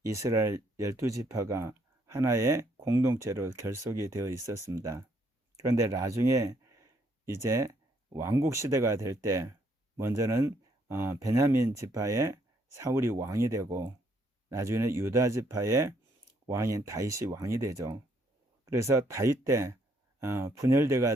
이스라엘 12지파가 하나의 공동체로 결속이 되어 있었습니다. 그런데 나중에 이제 왕국 시대가 될 때 먼저는 베냐민 지파의 사울이 왕이 되고 나중에는 유다 지파의 왕인 다윗이 왕이 되죠. 그래서 다윗 때 분열돼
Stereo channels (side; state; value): both; normal; correlation 0.70